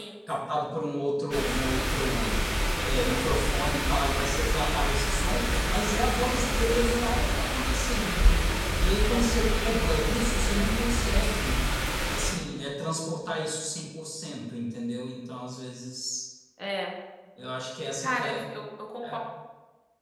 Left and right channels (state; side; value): identical; both; correlation 1.00